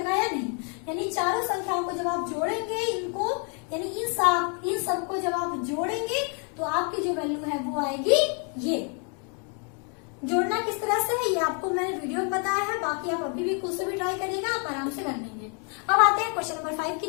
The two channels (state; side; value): quieter; right; 39.1 dB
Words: या नहीं। यानी चारों संख्याओं को जब आप जोड़ेंगे, इनको यानी इन सबको जब आप जोड़ेंगे तो आपकी जो वैल्यू है वो आएगी ये। जोड़ना किस तरह से है ये आपको मैंने वीडियो में बताया है, बाकी आप अभी भी खुद से भी ट्राई करिएगा, आप आराम से कर लेंगे। अब आते हैं क्वेश्चन नंबर 5 की